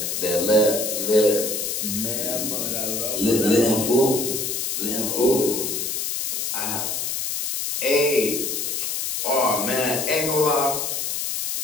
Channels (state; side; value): noise; left; hiss, 2 dB below the sound